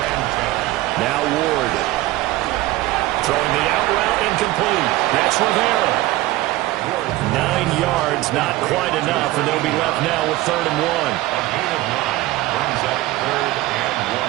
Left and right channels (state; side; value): quieter; left; 17.4 dB